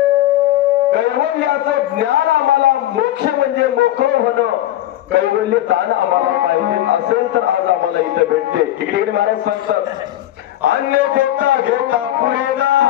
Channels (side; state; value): right; quieter; 13.6 dB